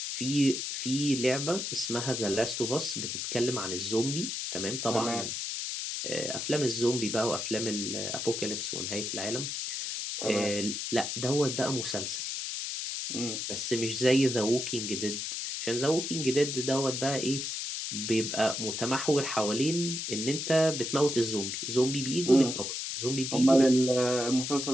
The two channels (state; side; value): noise; left; hiss, 3 dB below the sound